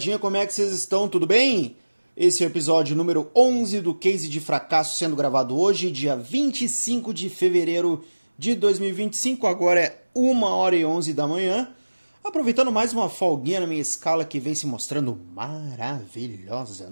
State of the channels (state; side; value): inverted; both; correlation -1.00